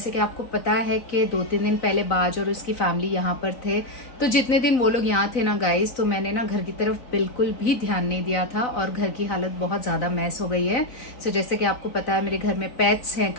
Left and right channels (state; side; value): late; right; 3.9 ms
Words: कि आपको पता है कि 2-3 दिन पहले बाज और उसकी फैमिली यहाँ पर थे, तो जितने दिन वो लोग यहाँ थे ना गाइस, तो मैंने ना घर की तरफ बिल्कुल भी ध्यान नहीं दिया था और घर की हालत बहुत ज्यादा मैस हो गई है। सो जैसे कि आपको पता है मेरे घर में पेट्स हैं,